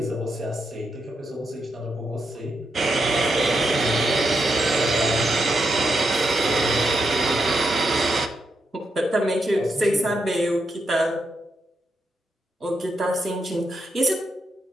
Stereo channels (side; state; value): both; normal; correlation 0.83